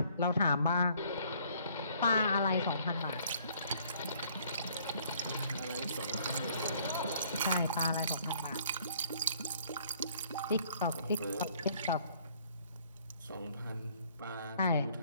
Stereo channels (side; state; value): both; inverted; correlation -0.61